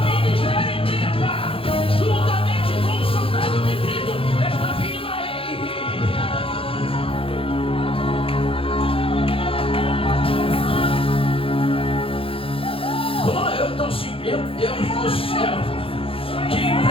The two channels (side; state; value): right; late; 0.27 ms